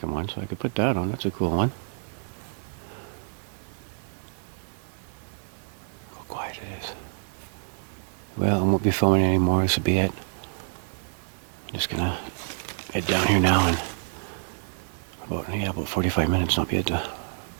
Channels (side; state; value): left; silent; digital silence